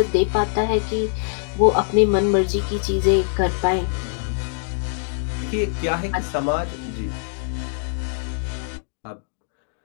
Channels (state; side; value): silent; right; digital silence